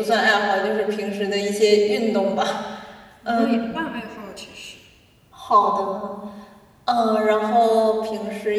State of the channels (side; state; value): both; identical; correlation 1.00